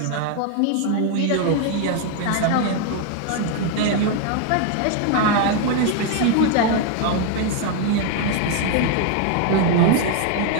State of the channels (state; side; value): different; both; correlation 0.00